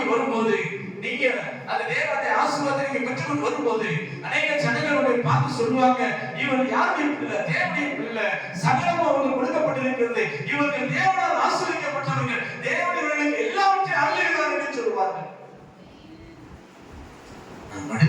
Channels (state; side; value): identical; both; correlation 1.00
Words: வரும்போது, நீங்க அந்த தேவனுடைய ஆசீர்வாதத்தை நீங்க பெற்றுக்கொண்டு வரும்போது, அநேக ஜனங்களுடைய பார்த்து சொல்லுவாங்க, இவர் யாருடைய பிள்ளை? தேவனுடைய பிள்ளை. சகலமும் அவங்களுக்கு கொடுக்கப்பட்டிருக்கிறது. இவர்கள் தேவனால் ஆசீர்வதிக்கப்பட்டவர்கள். தேவனுடைய எல்லாவற்றையும் அருளுகிறார் என்று சொல்லுவார்கள். நான்